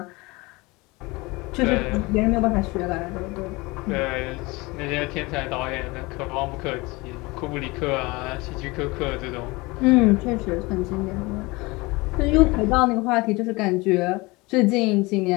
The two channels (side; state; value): right; quieter; 23.7 dB